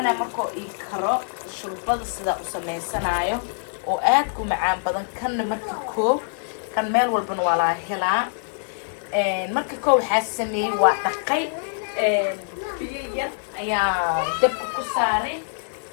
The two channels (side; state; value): right; silent; digital silence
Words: مركو إيكرو شربات صدا وسميسنايو وآدكو معان بدن كان مركو كان ميل والبن ولا هلا مركو حاسمي وقاي بيليا يا دب كساري